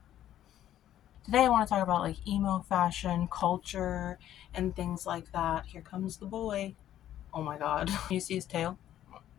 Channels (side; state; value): right; quieter; 11.9 dB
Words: I want to talk about like emo fashion, culture, and things like that. Here comes the boy. Oh my god. You see his tail?